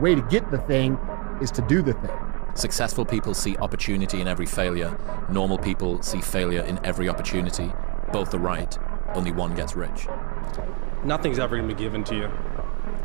to get the thing is to do the thing. Successful people see opportunity in every failure. Normal people see failure in every opportunity. Both are right, only one gets rich. Nothing's ever going to be given to you.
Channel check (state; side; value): quieter; left; 30.1 dB